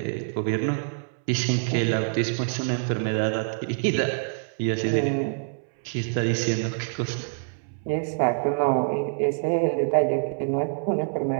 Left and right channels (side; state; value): left; silent; 61 dB below the other